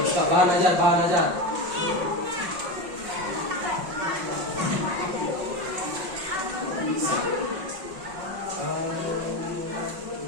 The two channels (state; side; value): late; left; 5.5 ms